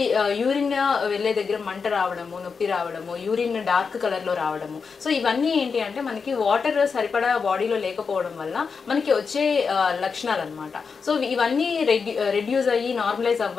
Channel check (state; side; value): quieter; right; 5.4 dB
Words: యూరిన్ వెళ్ళే దగ్గర మంట రావడము, నొప్పి రావడము, యూరిన్ డార్క్ కలర్లో రావడము. సో ఇవన్నీ ఏంటి అంటే మనకి వాటర్ సరిపడా బాడీలో లేకపోవడం వల్ల మనకి వచ్చే లక్షణాలు అనమాట. సో ఇవన్నీ రెడ్యూస్ అయ్యి నార్మలైజ్